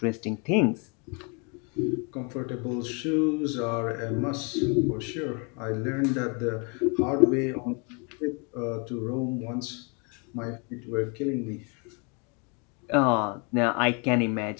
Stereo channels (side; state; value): right; quieter; 34.2 dB